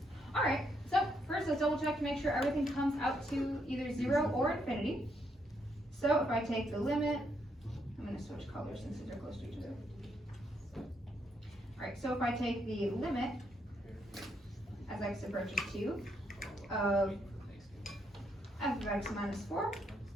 Alright, so first let's double check to make sure everything comes out to either 0 or infinity. So if I take the limit, I'm going to switch colors since these are close to each other. Alright, so if I take the limit as x approaches 2 of f of x minus 4,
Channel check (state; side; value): normal; both; correlation 0.76